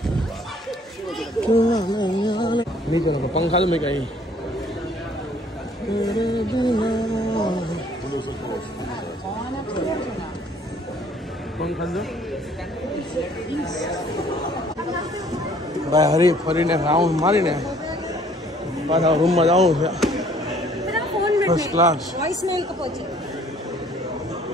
नीचे ना पंखा में कहीं पंखा दो भाई हरी फरी ने राउंड मारी ने पाछा रूम में जाऊँ फर्स्ट क्लास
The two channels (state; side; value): normal; both; correlation 0.58